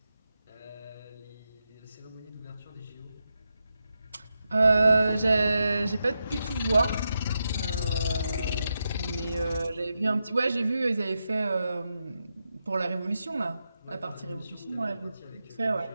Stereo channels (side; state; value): both; inverted; correlation -0.87